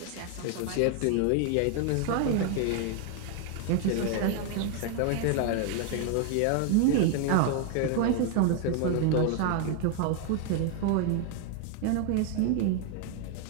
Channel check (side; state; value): both; different; correlation 0.00